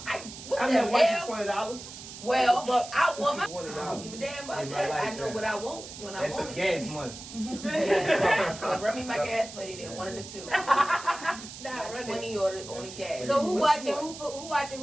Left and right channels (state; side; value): noise; right; hiss, 13 dB below the sound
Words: hell? watching $20. Well, but I want my. I $20. don't give a damn about In my that. I know lifetime. what I want when I That's want just it. gas money. Yeah, well, run me my gas money then, one of the two. Not Like running. 20 or the gas. So who What's watching? more? Who watching?